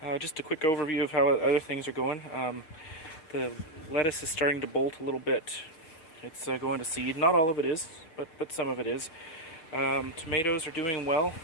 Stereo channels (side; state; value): right; late; 6.3 ms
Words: Just a quick overview of how other things are going. The lettuce is starting to bolt a little bit. It's going to seed. Not all of it is, but some of it is. Tomatoes are doing well.